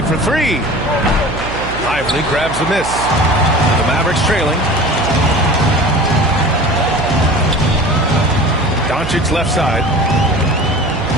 for 3. Lively grabs the miss. The Mavericks trailing. Doncic left side.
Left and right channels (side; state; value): right; noise; hum, 9 dB below the sound